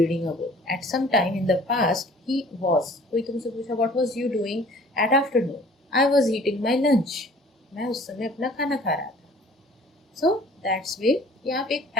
a book. At some time in the past, he was। कोई तुमसे पूछा what was you doing at afternoon? I was eating my lunch. मैं उस समय अपना खाना खा रहा था। So that's way यहाँ पे एक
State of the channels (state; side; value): normal; both; correlation 0.51